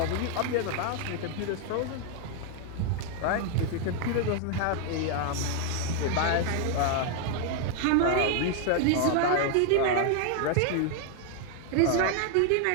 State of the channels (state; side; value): different; both; correlation 0.01